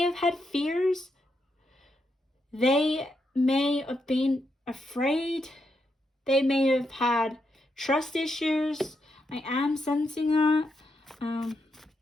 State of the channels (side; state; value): both; normal; correlation 0.82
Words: have had fears. They may have been afraid. They may have had trust issues. I am sensing that.